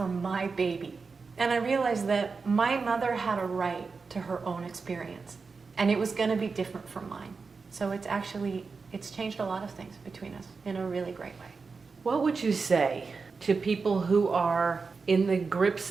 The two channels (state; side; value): quieter; left; 4.7 dB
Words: my baby. And I realized that my mother had a right to her own experience, and it was going to be different from mine. So it's changed a lot of things between us in a really great way. What would you say to people who are in the grips